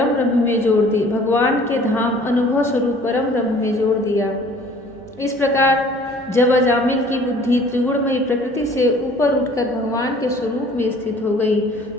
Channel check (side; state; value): both; normal; correlation 0.52